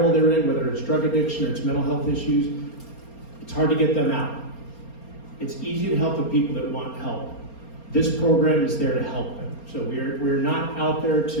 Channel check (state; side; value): late; right; 4.3 ms